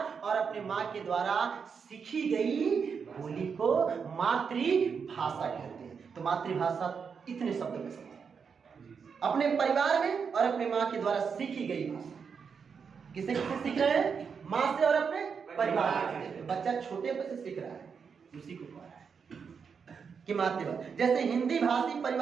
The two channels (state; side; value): quieter; left; 6.1 dB